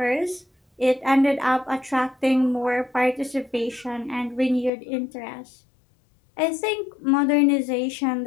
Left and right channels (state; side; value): drops out; right; at 4.7 s